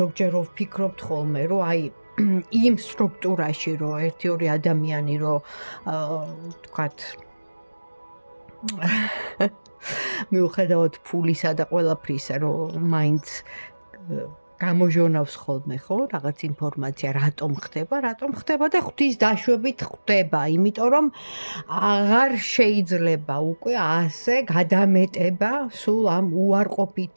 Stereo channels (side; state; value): both; inverted; correlation -1.00